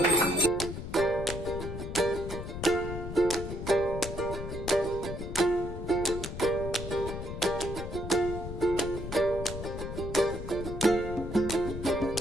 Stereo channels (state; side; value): noise; left; rumble, 7 dB below the sound